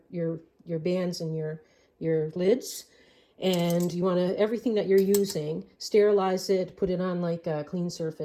bands and your lids. And you want to, everything that you're using, sterilize it, put it on like a clean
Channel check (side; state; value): both; identical; correlation 1.00